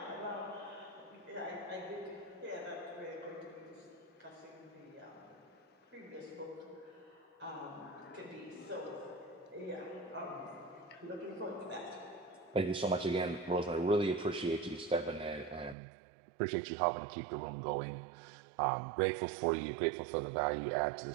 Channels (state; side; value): drops out; left; at 15.8 s